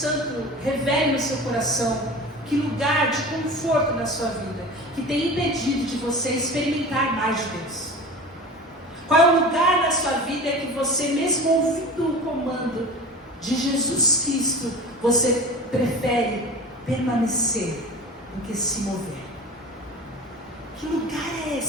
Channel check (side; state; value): both; normal; correlation 0.35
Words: revele no seu coração que lugar de conforto na sua vida que tem impedido de você experimentar mais de Deus. Qual é o lugar na sua vida que você, mesmo ouvindo o comando de Jesus Cristo, você prefere permanecer do que se mover? Que lugar é